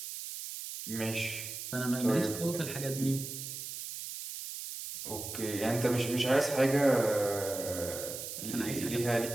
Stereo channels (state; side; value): noise; right; hiss, 8 dB below the sound